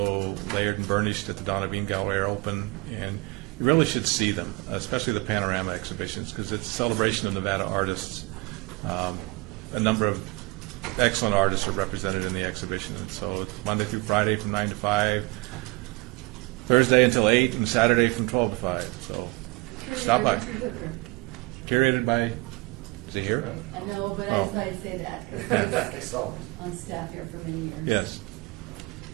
Layered and Burnished at the Donna Bean Gallery are open, and you really should see them, especially the panorama exhibitions, because it's a celebration of Nevada artists. A number of excellent artists are represented in the exhibition, and so it's Monday through Friday from 9 to 5, Thursday until 8, and Saturday from 12 to 5. So stop by. Curated by, is it here? I know, but I Oh. just thought I'd say that, because I was So, on staff here for many years. Yes.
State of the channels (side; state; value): left; quieter; 24.5 dB